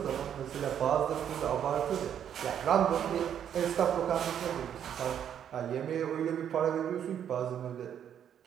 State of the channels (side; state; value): left; quieter; 9.2 dB